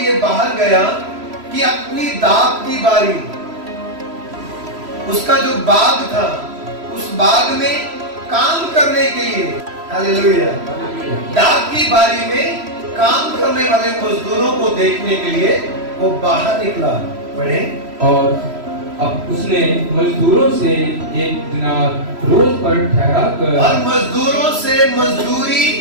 बाहर गया कि अपनी दाख की बारी, उसका जो बाग था, उस बाग में काम करने के लिए, हालेलुया, दाख की बारी में काम करने वाले मजदूरों को देखने के लिए वो बाहर निकला। पढ़े, और अब उसने मजदूरों से एक दिनार रोज पर ठहरा कर, और मजदूरों से मजदूरी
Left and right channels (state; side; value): late; left; 3.1 ms